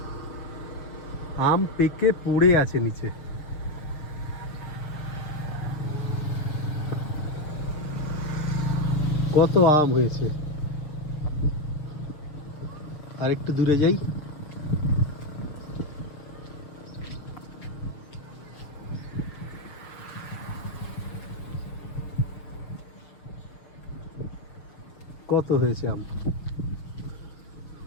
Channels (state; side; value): late; right; 6.6 ms